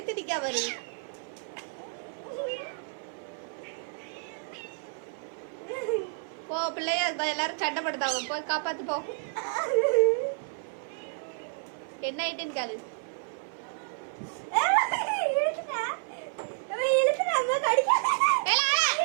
வரு போ பிள்ளைய எல்லாரும் சண்டை படுத்தாங்க போ காப்பாத்து போ என்ன ஆயிட்டுன்னு காலு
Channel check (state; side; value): silent; left; 55 dB below the other